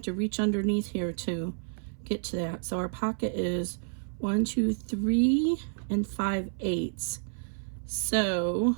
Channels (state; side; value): silent; left; 57 dB below the other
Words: to reach underneath here to get to that. So our pocket is 1, 2, 3, and 5/8. So,